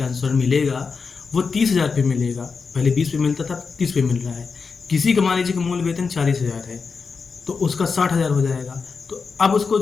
अनुसार मिलेगा वो 30,000 पे मिलेगा। पहले 20 पे मिलता था, 30 पे मिल रहा है। किसी का मान लीजिए कि मूल वेतन 40,000 है तो उसका 60,000 हो जाएगा। तो अब उसको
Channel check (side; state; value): right; quieter; 5.1 dB